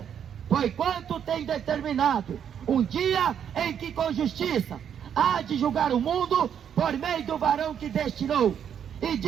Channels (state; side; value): quieter; left; 8.6 dB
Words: porquanto tem determinado um dia em que com justiça há de julgar o mundo por meio do varão que destinou, e